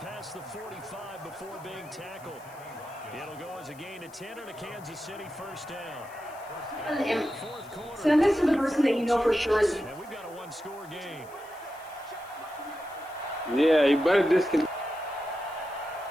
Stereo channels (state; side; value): noise; left; hiss, 24 dB below the sound